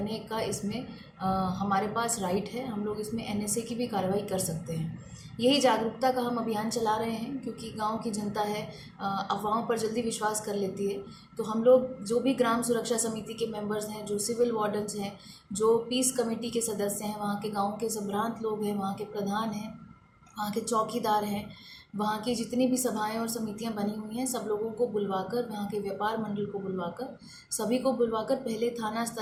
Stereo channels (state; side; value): identical; both; correlation 1.00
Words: का इसमें हमारे पास राइट है। हम लोग इसमें एनएसए की भी कार्रवाई कर सकते हैं। यही जागरूकता का हम अभियान चला रहे हैं क्योंकि गांव की जनता है अफवाहों पर जल्दी विश्वास कर लेती है। तो हम लोग जो भी ग्राम सुरक्षा समिति के मेंबर्स हैं, जो सिविल वार्डन्स हैं, जो पीस कमेटी के सदस्य हैं, वहाँ के गांव के संभ्रांत लोग हैं, वहाँ के प्रधान हैं, वहाँ के चौकीदार हैं, वहाँ की जितनी भी सभाएं और समितियां बनी हुई हैं सब लोगों को बुलवाकर, वहाँ के व्यापार मंडल को बुलवाकर, सभी को बुलवाकर पहले थाना